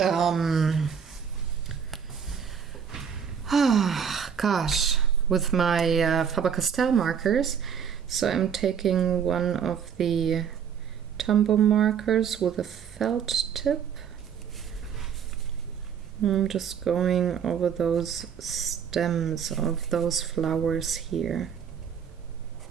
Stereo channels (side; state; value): left; quieter; 7.5 dB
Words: with my Faber-Castell markers. So I'm taking one of the Tombow markers with a felt tip. I'm just going over those stems of those flowers here.